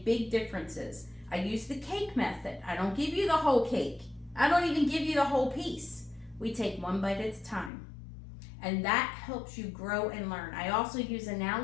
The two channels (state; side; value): drops out; right; at 7.7 s